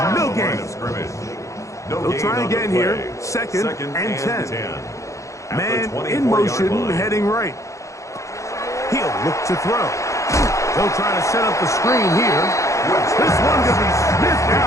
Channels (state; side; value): late; right; 0.15 ms